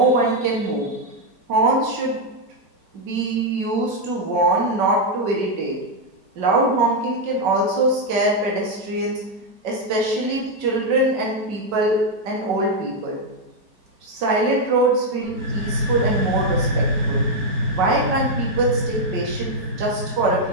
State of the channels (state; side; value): late; left; 5.3 ms